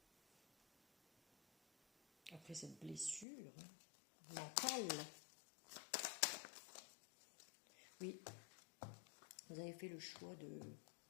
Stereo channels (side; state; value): right; drops out; at 3.2 s